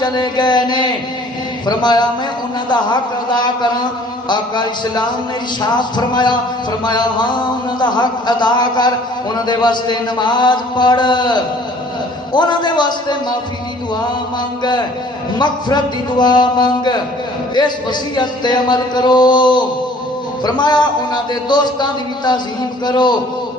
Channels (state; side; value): normal; both; correlation 0.54